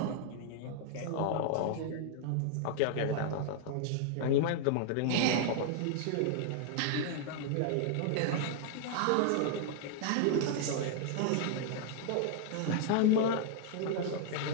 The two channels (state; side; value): different; both; correlation 0.00